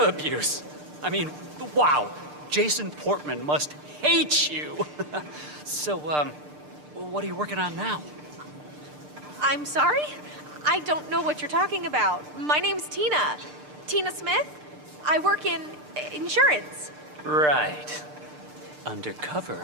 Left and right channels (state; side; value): late; left; 6.7 ms